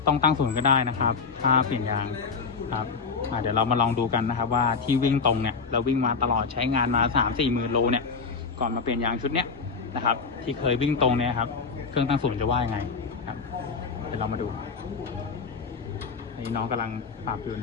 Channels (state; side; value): quieter; right; 5.1 dB